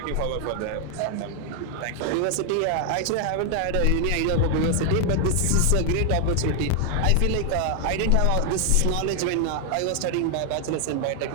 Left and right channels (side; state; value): both; different; correlation 0.00